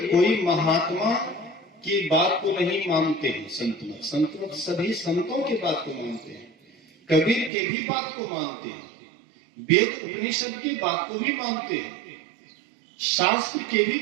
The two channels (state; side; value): drops out; left; at 7.5 s